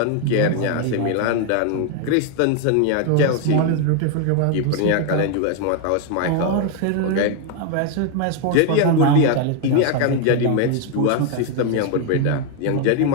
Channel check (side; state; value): both; different; correlation 0.00